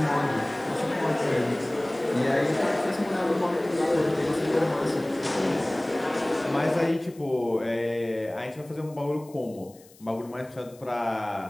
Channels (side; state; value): left; noise; hiss, 26 dB below the sound